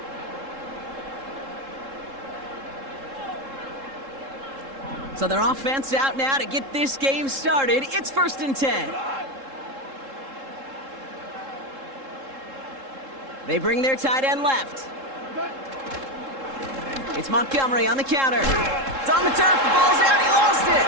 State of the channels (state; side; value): late; left; 3.7 ms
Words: So their offense out now to get this game started. It's 1st and 10. They bring their tight end left. It's Montgomery on the counter. It's on the turf. The ball's out. He lost it.